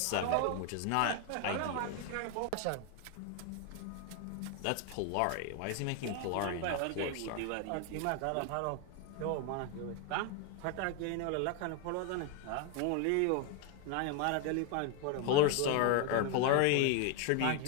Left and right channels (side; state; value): both; different; correlation 0.01